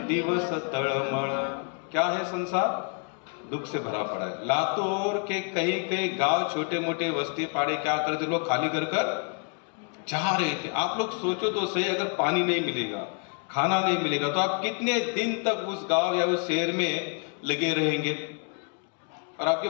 तळमळ। क्या है संसार? दुख से भरा पड़ा है। लातूर के कई कई गांव, छोटे मोटे बस्ती पाड़े क्या करते लोग, खाली कर जा रहे थे। आप लोग सोचो तो सही, अगर पानी नहीं मिलेगा, खाना नहीं मिलेगा, तो आप कितने दिन तक उस गांव या उस शहर में लगे रहेंगे? और आपके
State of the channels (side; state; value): right; quieter; 39.0 dB